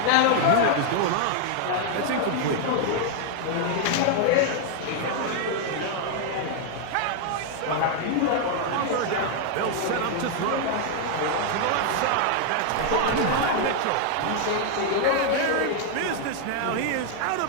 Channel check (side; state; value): both; different; correlation 0.00